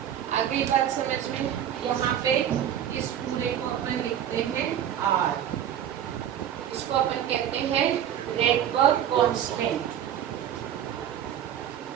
आगे बात समझ में, यहाँ पे इस पूरे को अपन लिखते हैं R, इसको अपन कहते हैं रेडबर्ग कांस्टेंट।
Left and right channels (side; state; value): left; quieter; 10.1 dB